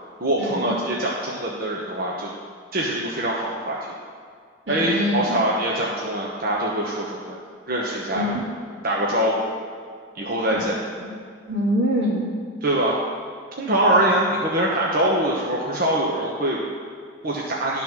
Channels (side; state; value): both; normal; correlation 0.03